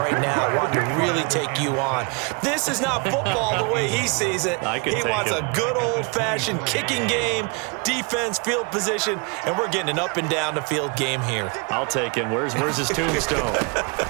now wanting to really take you on. This is not football the way he sees it. He wants a good old-fashioned kicking game, defense, field position, and we're getting an up-and-down the field game here. I'll take him. Where's his tombstone?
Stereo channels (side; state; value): left; quieter; 32.5 dB